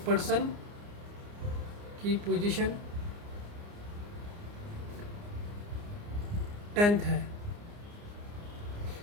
पर्सन की पोजीशन 10th है,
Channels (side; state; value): left; late; 29 ms